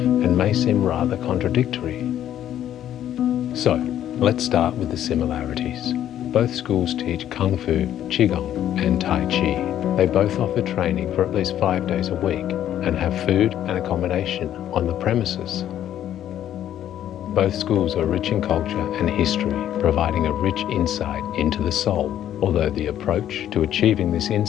may seem rather contradictory. So, let's start with the similarities. Both schools teach Kung Fu, Qigong, and Tai Chi. They both offer training for at least 5 days a week and have food and accommodation on the premises. Both schools are rich in culture and history, providing a rich insight into the soul, although the approach to achieving this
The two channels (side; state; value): right; quieter; 11.2 dB